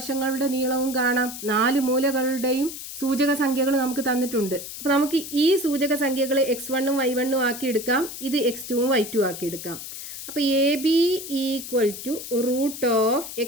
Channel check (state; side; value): noise; left; hiss, 10 dB below the sound